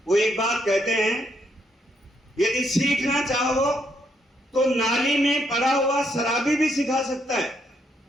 वो एक बात कहते हैं, यदि सीखना चाहो तो नाली में पड़ा हुआ शराबी भी सिखा सकता है,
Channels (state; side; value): normal; both; correlation 0.75